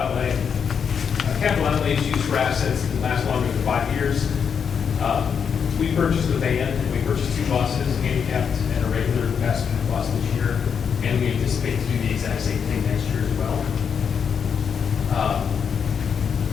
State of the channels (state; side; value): quieter; right; 6.9 dB